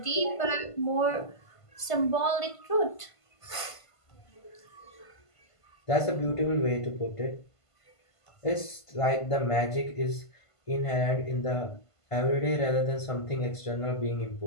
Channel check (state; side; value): late; right; 1.5 ms